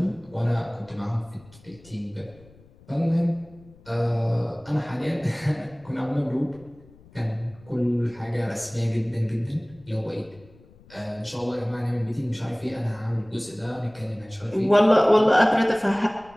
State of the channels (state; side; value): noise; left; rumble, 25 dB below the sound